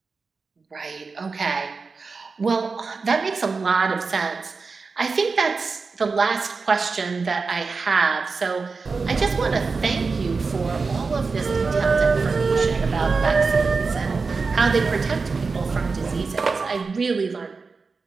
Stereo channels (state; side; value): quieter; left; 4.5 dB